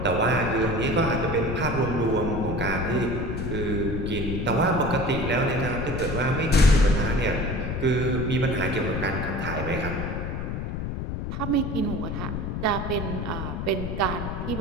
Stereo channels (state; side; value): noise; left; rumble, 4 dB below the sound